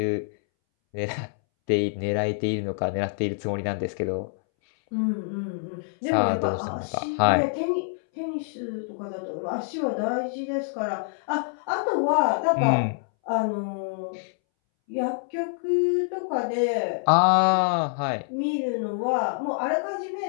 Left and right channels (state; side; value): silent; right; 61 dB below the other